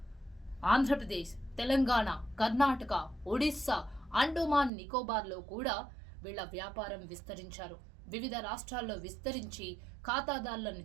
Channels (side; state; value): left; drops out; at 4.7 s